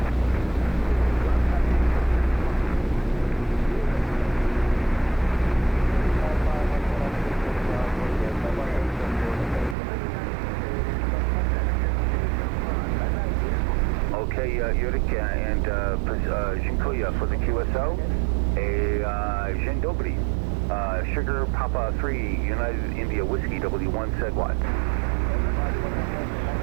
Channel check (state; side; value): drops out; left; at 9.8 s